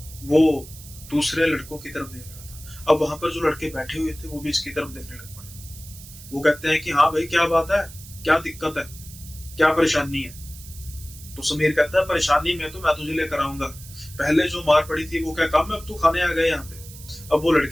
वो दूसरे लड़कों की तरफ देख रहा था। अब वहां पर जो लड़के बैठे हुए थे वो भी इसकी तरफ देखने लग पड़े। वो कहते हैं कि हाँ भाई क्या बात है, क्या दिक्कत है, क्या परेशानी है। तो समीर कहता है परेशानी में तो मैं तुझे लेकर आऊंगा, पहले जो मार पड़ी थी वो क्या काम है, अब तू खाने आ गए यहाँ पे। अब वो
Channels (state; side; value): noise; right; hiss, 17 dB below the sound